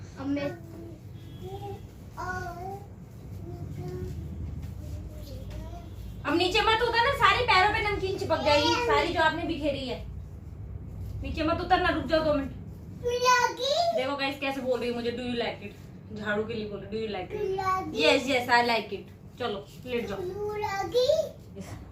अब मैं अब नीचे मत उतरना, सारे पैरों पे नमकीन चिपक जाएगी, सारी जो आपने बिखेरी है। नीचे मत उतरना, रुक जाओ 2 मिनट। देखो गाइस कैसे बोल रही है मुझे, डू यू लाइक इट? झाड़ू के लिए बोल रही, do you like it? Yes yes I like it. चलो लेट जाओ।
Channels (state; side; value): identical; both; correlation 1.00